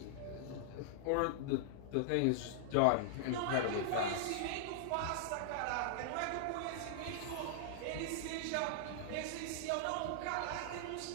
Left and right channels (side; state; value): both; different; correlation -0.01